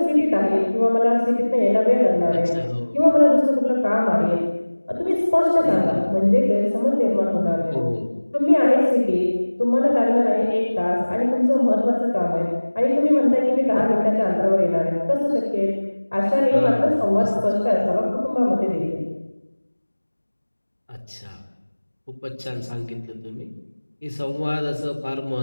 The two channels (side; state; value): both; inverted; correlation -1.00